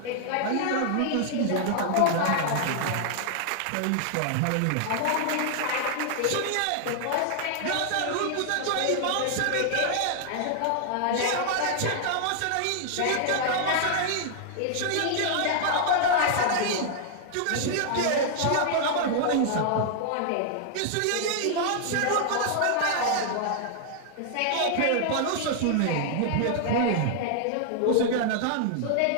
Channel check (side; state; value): both; different; correlation -0.01